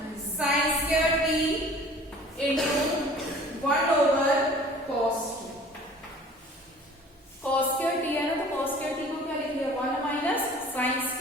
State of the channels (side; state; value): both; normal; correlation 0.47